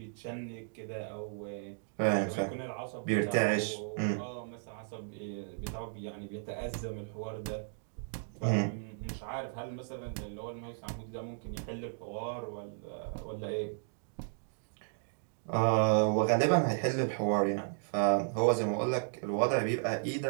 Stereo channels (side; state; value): left; silent; digital silence